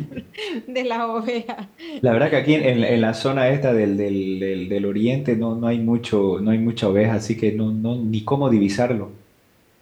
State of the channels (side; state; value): both; identical; correlation 1.00